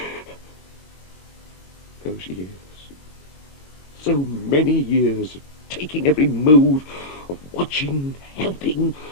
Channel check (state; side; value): late; right; 22 ms